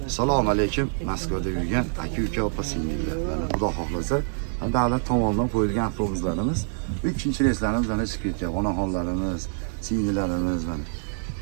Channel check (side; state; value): left; silent; digital silence